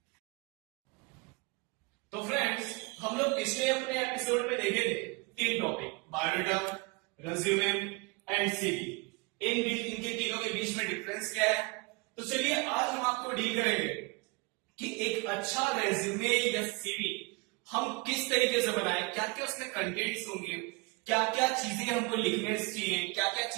तो फ्रेंड्स, हम लोग पिछले अपने एपिसोड में देखे थे 3 topic, biodata, resume and CV. इनके तीनों के बीच में डिफरेंस क्या है। तो चलिए आज हम आपको डील करेंगे कि एक अच्छा रेज्यूमे या सीवी हम किस तरीके से बनाएं, क्या क्या उसमें कंटेंट्स होंगे, क्या क्या चीजें हमको लिखने चाहिए, क्या क्या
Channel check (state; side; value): quieter; left; 27.6 dB